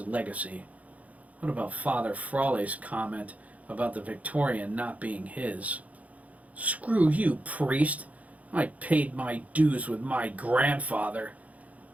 What about Father Frawley's comment about the Victorian not being his? Screw you, priest. I paid my dues with my grandfather.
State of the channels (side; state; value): left; late; 0.070 ms